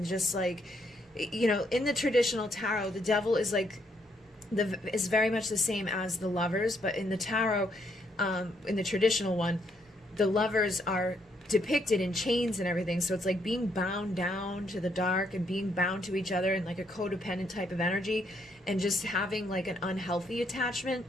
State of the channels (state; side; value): normal; both; correlation 0.73